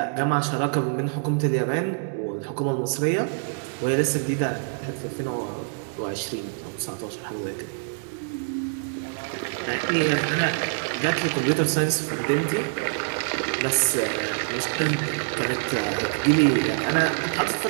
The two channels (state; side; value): silent; left; digital silence